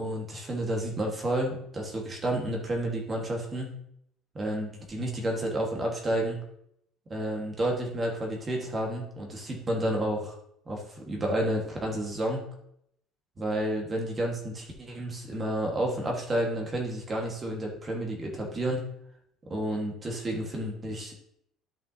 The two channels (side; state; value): both; normal; correlation 0.67